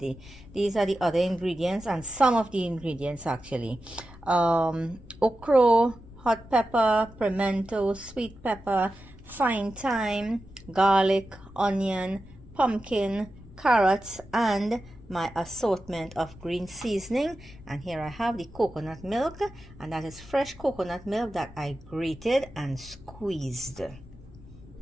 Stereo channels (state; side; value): noise; left; rumble, 19 dB below the sound